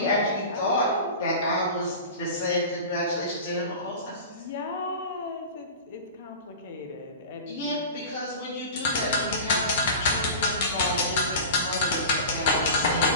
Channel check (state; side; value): inverted; both; correlation -0.33